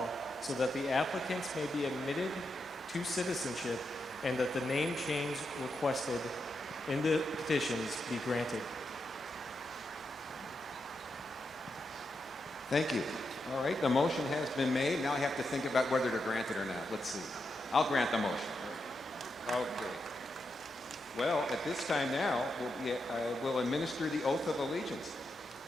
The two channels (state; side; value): normal; both; correlation 0.85